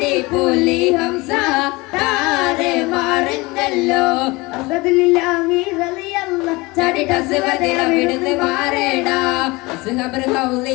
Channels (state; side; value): quieter; right; 23.5 dB